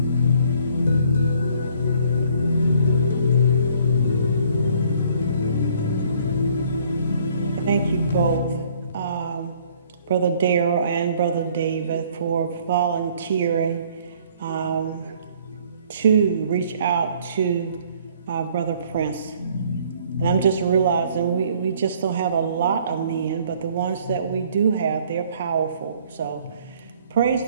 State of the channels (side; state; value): both; inverted; correlation -0.59